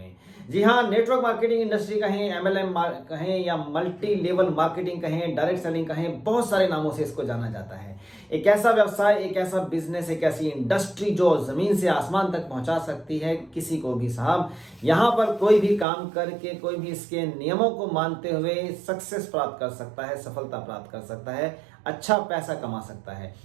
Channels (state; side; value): drops out; left; at 15.9 s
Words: जी हाँ, नेटवर्क मार्केटिंग इंडस्ट्री कहें, एमएलएम कहें या मल्टी लेवल मार्केटिंग कहें, डायरेक्ट सेलिंग कहें, बहुत सारे नामों से इसको जाना जाता है। एक ऐसा व्यवसाय, एक ऐसा बिजनेस, एक ऐसी इंडस्ट्री जो जमीन से आसमान तक पहुंचा सकती है किसी को भी। साहब, यहाँ पर कोई भी काम करके, कोई भी इसके नियमों को मानते हुए सक्सेस प्राप्त कर सकता है, सफलता प्राप्त कर सकता है, अच्छा पैसा कमा सकता है,